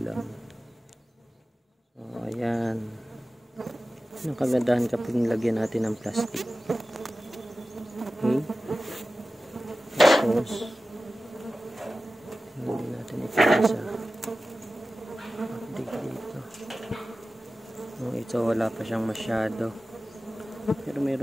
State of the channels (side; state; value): both; normal; correlation 0.95